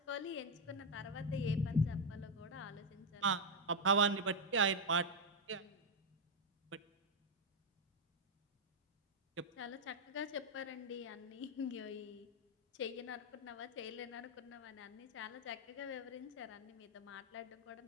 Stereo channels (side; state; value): both; normal; correlation 0.02